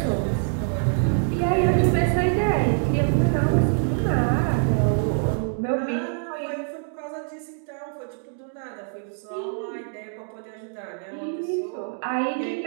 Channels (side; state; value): left; silent; 62 dB below the other